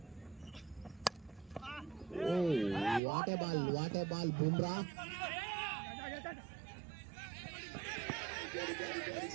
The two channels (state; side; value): drops out; left; at 3.0 s